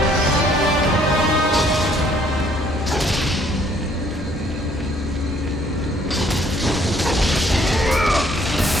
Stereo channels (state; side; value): normal; both; correlation 0.63